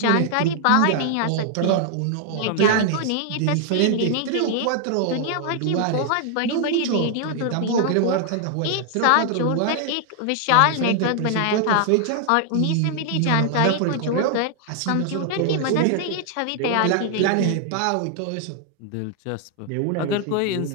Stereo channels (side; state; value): both; different; correlation 0.00